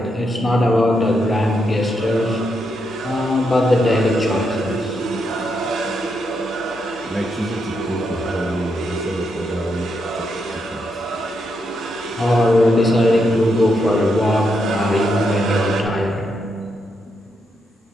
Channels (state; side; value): normal; both; correlation 0.81